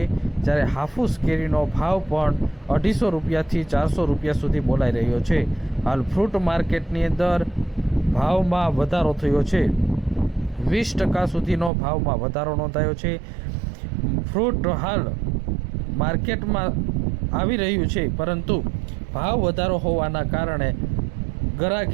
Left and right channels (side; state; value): left; drops out; at 11.7 s